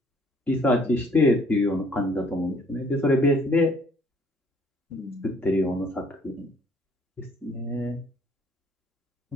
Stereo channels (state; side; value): normal; both; correlation 0.60